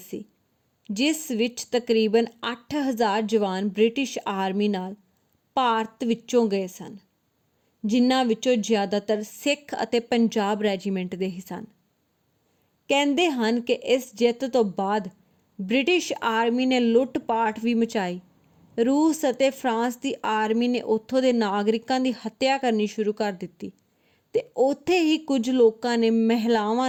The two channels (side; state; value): both; identical; correlation 1.00